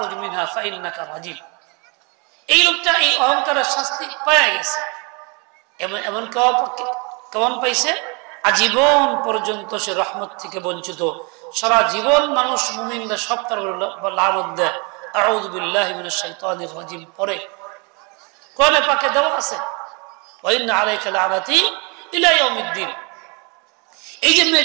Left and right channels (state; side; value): quieter; left; 31.8 dB